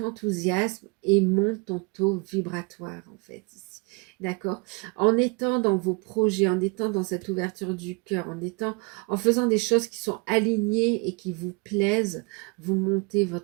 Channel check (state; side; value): quieter; left; 31.3 dB